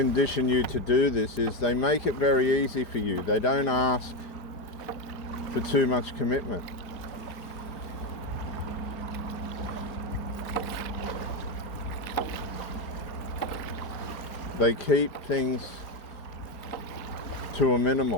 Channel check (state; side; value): late; right; 5.0 ms